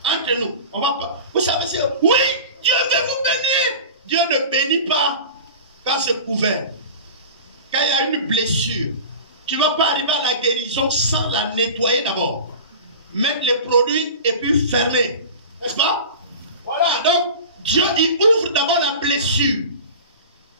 Entre nous, on va pas. Vous savez, c'est oui, Dieu veut vous bénir. Dieu ne bénit pas quand c'est couvert. Quand il y a une blessure, tu ne vas pas arriver à la guérison sans la nettoyer d'abord. Mettre les produits et puis fermer. N'est-ce pas? Voilà, donc Dieu il ouvre d'abord la blessure.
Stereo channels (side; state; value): both; inverted; correlation -0.35